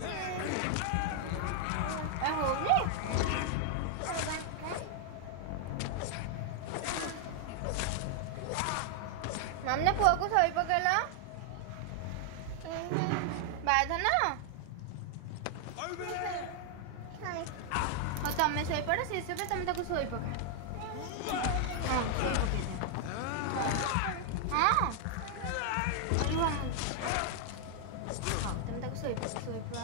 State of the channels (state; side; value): different; both; correlation 0.00